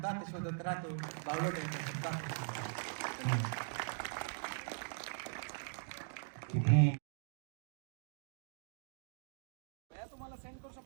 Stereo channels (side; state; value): left; silent; digital silence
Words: शोधत राहतो. बावळट या एका शब्दात. किती तुम्हाला सेंड करू